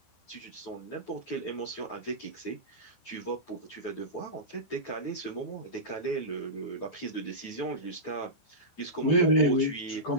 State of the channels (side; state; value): right; late; 12 ms